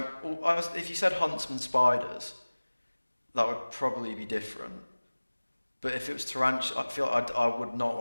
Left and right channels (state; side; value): inverted; both; correlation -1.00